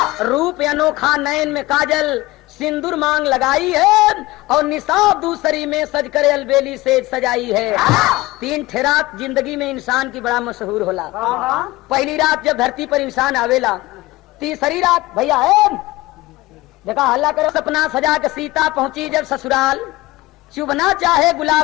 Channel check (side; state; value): right; quieter; 19.4 dB